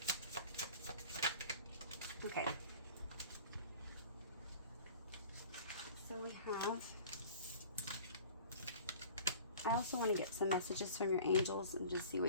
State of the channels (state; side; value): inverted; both; correlation -0.43